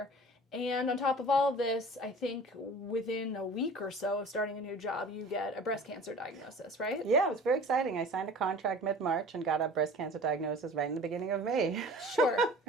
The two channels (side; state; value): both; normal; correlation 0.42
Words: And on top of all of this, I think within a week or so of starting a new job, you get a breast cancer diagnosis, right? Yeah, it was very exciting. I signed a contract mid-March and got a breast cancer diagnosis right in the beginning of May. Sure.